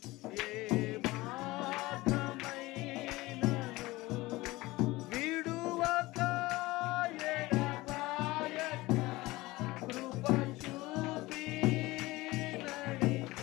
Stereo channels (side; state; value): right; quieter; 20.0 dB